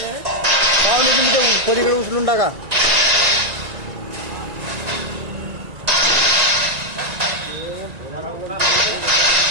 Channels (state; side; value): late; left; 1.9 ms